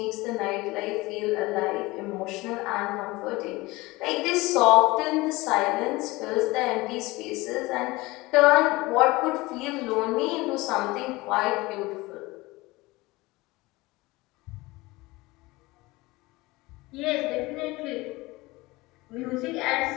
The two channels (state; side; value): quieter; right; 21.4 dB